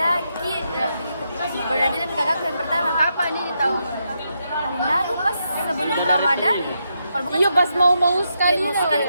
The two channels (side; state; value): both; inverted; correlation -0.82